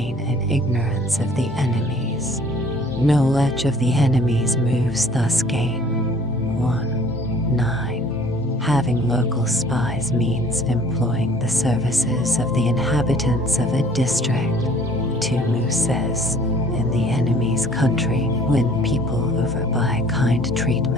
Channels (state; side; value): normal; both; correlation 0.53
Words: in ignorance of the enemies. Knowledge of the enemy's moves thus gain. 9. Having local spies means employing the services of the inhabitants of a district. Tumu says, in the enemy's country, win people over by kind